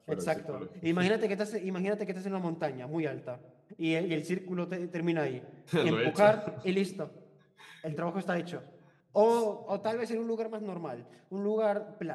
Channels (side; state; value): both; identical; correlation 1.00